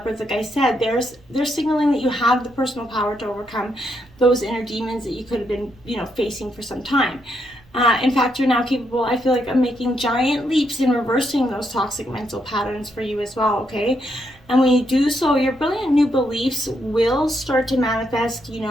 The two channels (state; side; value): noise; right; rumble, 27 dB below the sound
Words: like I said, they're signaling that you have the personal power to overcome those inner demons that you could have been, you know, facing for some time. In fact, you're now capable, I feel like, of making giant leaps in reversing those toxic mental patterns for you as well, okay? And when you do so, your brilliant new beliefs will start to manifest, you